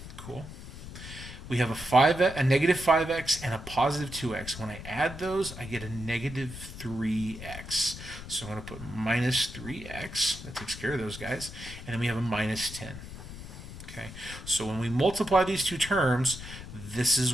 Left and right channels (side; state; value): left; noise; rumble, 12 dB below the sound